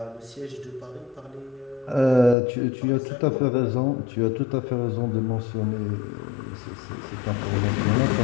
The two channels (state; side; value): drops out; right; at 2.4 s